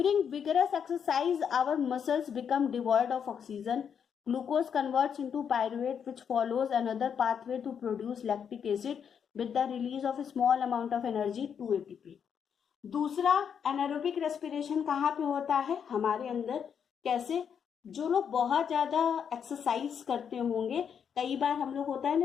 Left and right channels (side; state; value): right; quieter; 7.5 dB